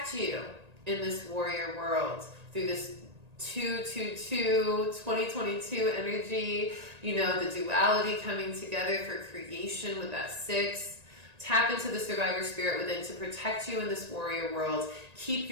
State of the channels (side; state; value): left; late; 1.8 ms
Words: you in this warrior world through this 2022 energy, the duality coming together for creation with that 6. Tap into the survivor spirit within to protect you in this warrior world. Keep